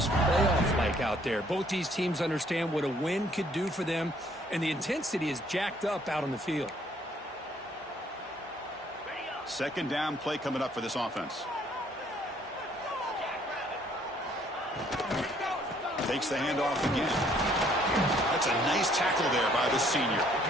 playoff-like out there. Both these teams understand what a win could do for them, and the intensity is jacked up out on the field. 2nd down play coming up for this offense. Takes the handoff again. That's a nice tackle there by the senior.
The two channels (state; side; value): normal; both; correlation 0.63